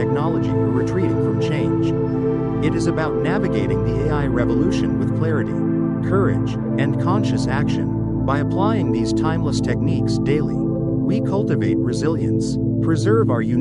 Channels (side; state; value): both; identical; correlation 1.00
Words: or retreating from change. It is about navigating the AI revolution with clarity, courage, and conscious action. By applying these timeless techniques daily, we cultivate resilience, preserve our